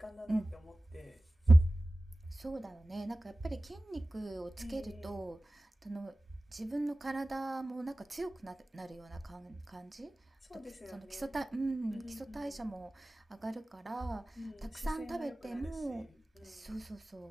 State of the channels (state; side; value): normal; both; correlation 0.96